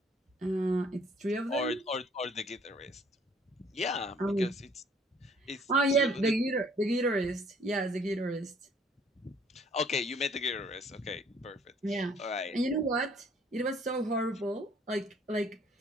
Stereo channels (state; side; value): normal; both; correlation 0.59